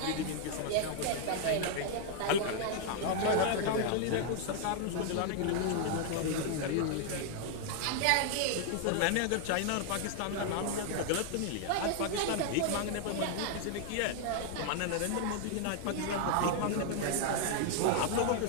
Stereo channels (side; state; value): both; different; correlation 0.00